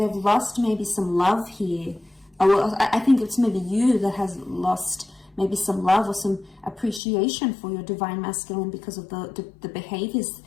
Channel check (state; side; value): drops out; right; at 7.0 s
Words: lost maybe some love here. Well, I think it's maybe you that has lost maybe some love or some appreciation for your divine masculine because of the behaviors